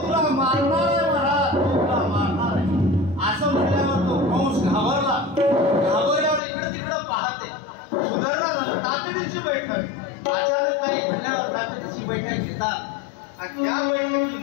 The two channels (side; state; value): right; drops out; at 6.4 s